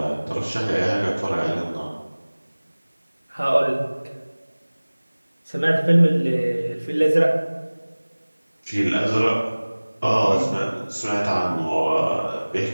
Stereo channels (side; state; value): both; inverted; correlation -1.00